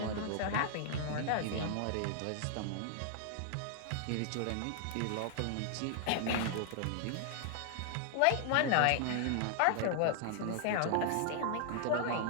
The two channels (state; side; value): different; both; correlation 0.00